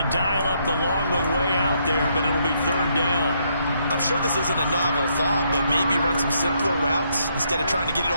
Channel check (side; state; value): both; inverted; correlation -0.74